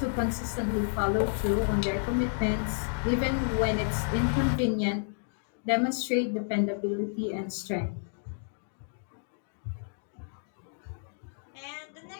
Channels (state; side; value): silent; right; digital silence